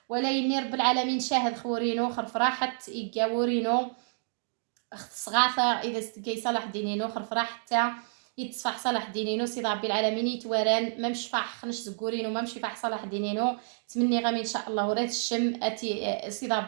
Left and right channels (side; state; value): left; silent; digital silence